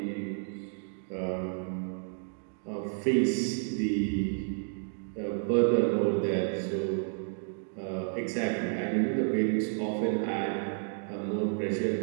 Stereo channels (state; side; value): silent; left; 57 dB below the other